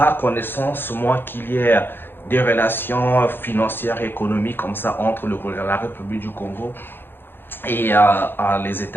connaissance, moi, qu'il y ait des relations financières et économiques comme ça entre la République du Congo et les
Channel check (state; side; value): late; right; 0.10 ms